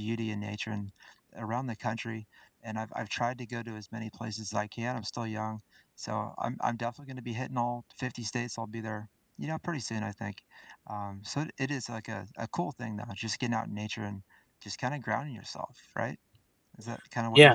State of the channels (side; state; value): both; identical; correlation 1.00